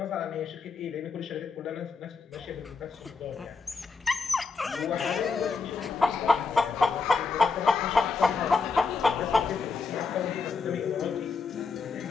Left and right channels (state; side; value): quieter; right; 4.6 dB